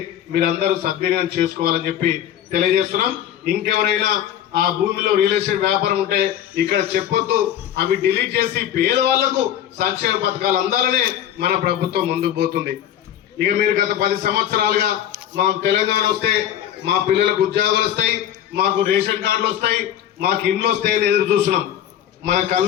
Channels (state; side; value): quieter; right; 10.8 dB